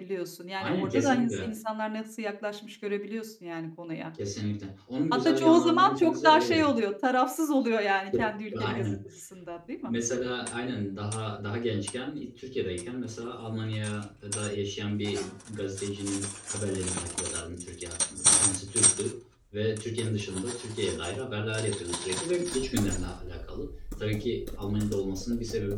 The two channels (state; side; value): identical; both; correlation 1.00